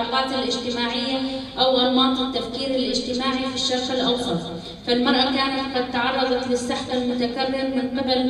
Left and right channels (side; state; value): both; identical; correlation 1.00